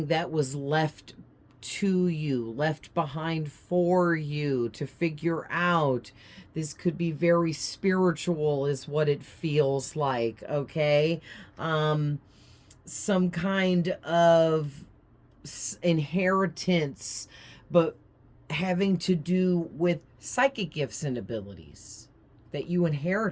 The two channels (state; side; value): identical; both; correlation 1.00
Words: that was left to you, left behind for you to figure out. This could be very spiritual is what it feels like, okay? Some kind of inheritance, but having to do with psychic gifts and abilities that you